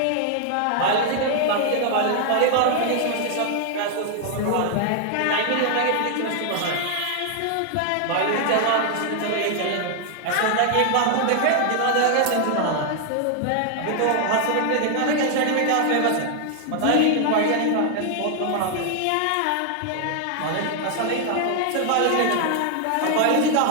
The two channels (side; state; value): both; different; correlation 0.00